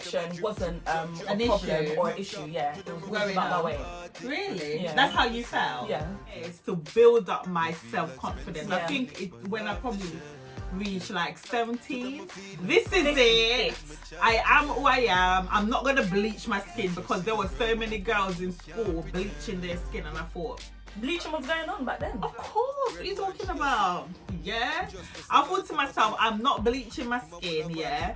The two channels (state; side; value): identical; both; correlation 1.00